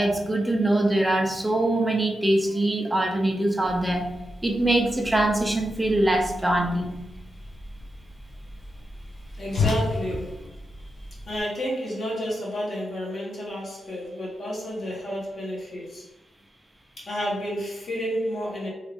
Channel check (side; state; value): both; normal; correlation 0.88